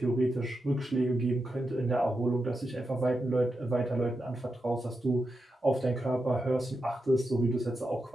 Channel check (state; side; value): normal; both; correlation 0.88